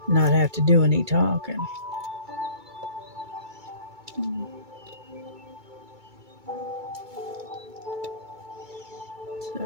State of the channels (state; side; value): late; left; 2.2 ms